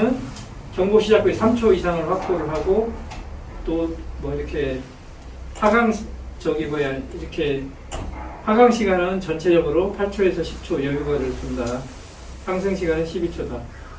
경보 시작 후에 3초 이상을 확보를 하고, 또 뭐 이렇게 하강 이렇게 하강 시간은 전체적으로 8초에서 10초 여유가를 둔다. 상승 시간은 12초다.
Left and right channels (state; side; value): identical; both; correlation 1.00